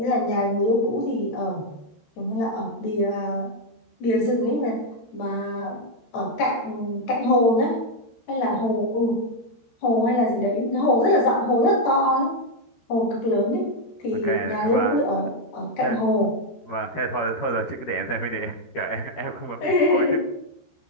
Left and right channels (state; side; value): late; right; 13 ms